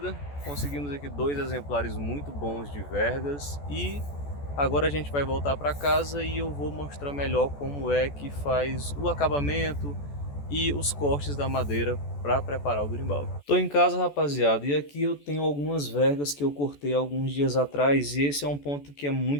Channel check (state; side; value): late; right; 14 ms